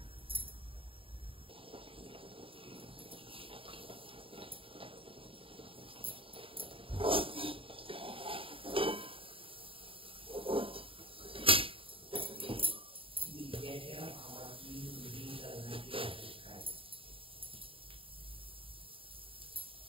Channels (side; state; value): left; late; 0.26 ms